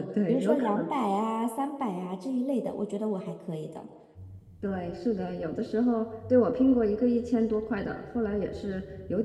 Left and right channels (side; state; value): both; identical; correlation 1.00